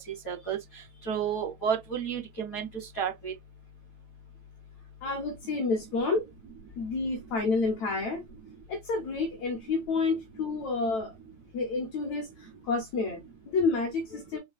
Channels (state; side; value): late; right; 9.0 ms